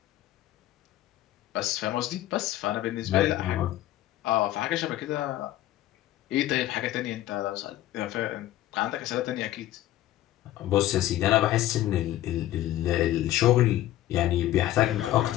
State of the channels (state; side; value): quieter; right; 14.1 dB